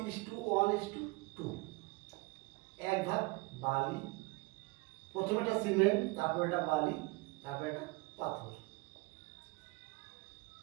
1 ভাগ বালি, প্রথমে একটা সিমেন্ট, তারপর এটা বালি, তারপর এটা পাথর।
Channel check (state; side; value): quieter; left; 24.5 dB